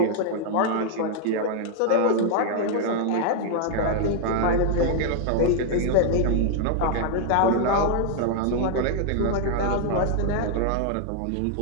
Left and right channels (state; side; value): different; both; correlation 0.00